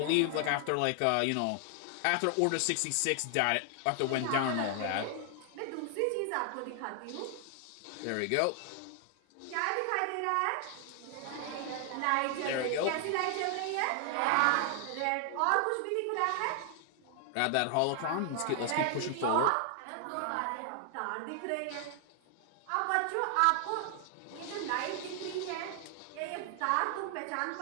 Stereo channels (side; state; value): both; different; correlation 0.00